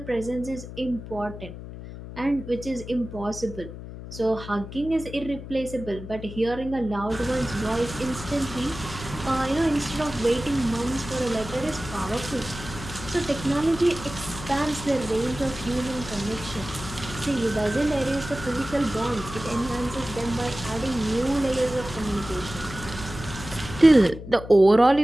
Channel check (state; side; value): noise; left; hum, 11 dB below the sound